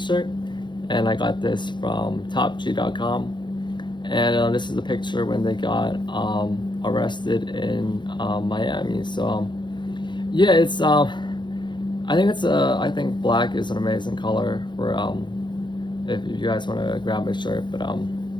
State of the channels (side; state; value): right; late; 0.22 ms